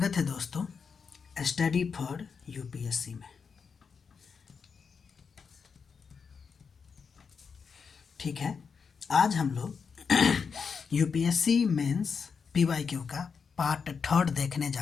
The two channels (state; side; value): quieter; right; 5.8 dB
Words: है दोस्तों स्टडी फॉर यूपीएससी में। ठीक है, आज हम लोग यूपीएससी मेंस पीवाईक्यू का पार्ट 3 देखने